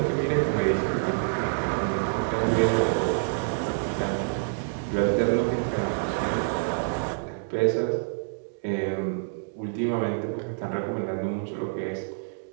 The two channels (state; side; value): silent; left; digital silence